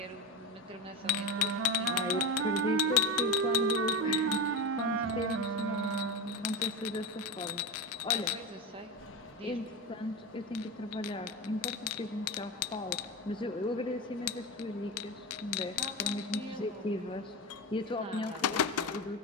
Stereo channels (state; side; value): normal; both; correlation 0.19